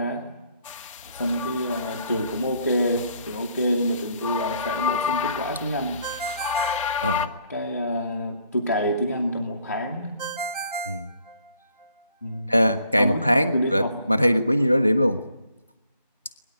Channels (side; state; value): both; inverted; correlation -0.66